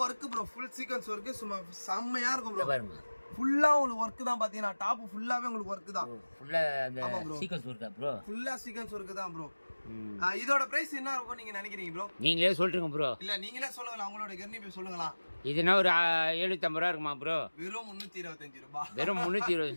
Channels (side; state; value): both; inverted; correlation -1.00